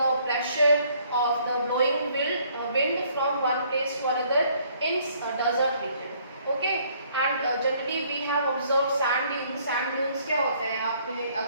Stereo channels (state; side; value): inverted; both; correlation -0.63